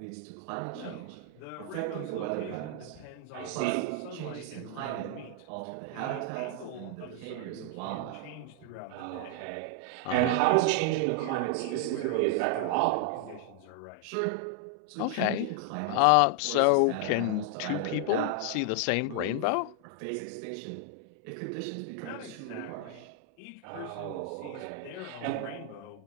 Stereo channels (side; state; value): both; different; correlation 0.00